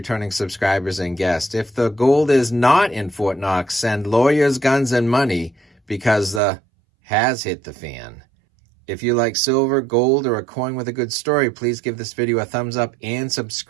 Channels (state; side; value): drops out; left; at 6.4 s